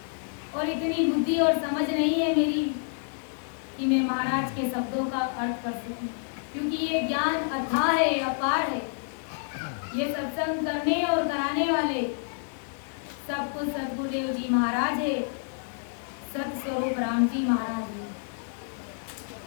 और इतनी बुद्धि और समझ नहीं है मेरी कि मैं महाराज के शब्दों का अर्थ कर सकूं, क्योंकि ये ज्ञान अथाह है, अपार है। ये सत्संग करने और कराने वाले सब कुछ सदगुरुदेव जी महाराज है, सत स्वरूप राम जी महाराज है।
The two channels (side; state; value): right; silent; 59 dB below the other